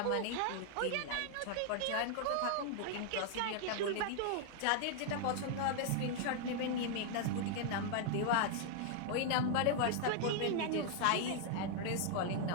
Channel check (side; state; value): both; different; correlation 0.00